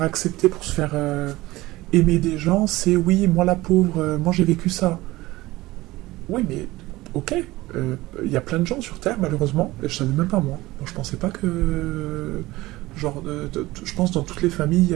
accepter, pour se faire aimer des gens, c'est oui, moi la pauvre, moi j'ai vécu ça. Oui, mais ok, il y a plein de gens sur Terre, malheureusement, et je savais même pas moi. Moi je pensais pas que... Genre, je pense dans toutes les familles, il y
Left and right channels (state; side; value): quieter; left; 18.8 dB